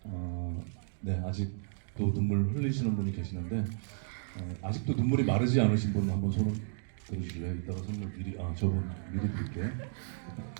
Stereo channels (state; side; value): silent; left; digital silence